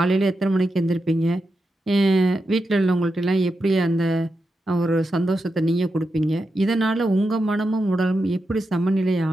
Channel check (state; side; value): normal; both; correlation 0.88